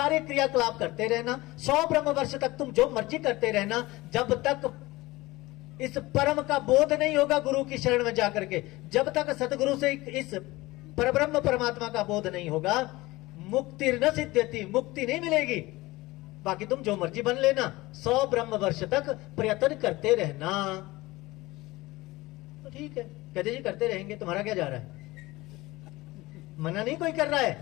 क्रियाकलाप करते रहना, 100 ब्रह्म वर्ष तक तुम जो मर्जी करते रहना, जब तक इस परम का बोध नहीं होगा गुरु की शरण में जाकर के, जब तक सतगुरु से इस परब्रह्म परमात्मा का बोध नहीं होगा, मुक्ति न सिद्ध्यति, मुक्ति नहीं मिलेगी। बाकी तुम जो मर्जी बन लेना, 100 ब्रह्म वर्ष तक प्रयत्न करते रहना। तो ठीक है, कहते जी करते रहेंगे, तुम्हारा क्या जा रहा है? मना नहीं कोई कर रहा है।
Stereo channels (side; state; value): right; quieter; 20.1 dB